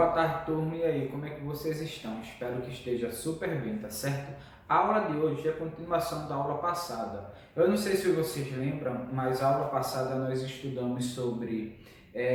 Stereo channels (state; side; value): identical; both; correlation 1.00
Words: tarde, turma. E aí, como é que vocês estão? Espero que esteja super bem, tá certo? A aula de hoje é a continuação da aula passada. Eu não sei se vocês lembram, mas a aula passada nós estudamos sobre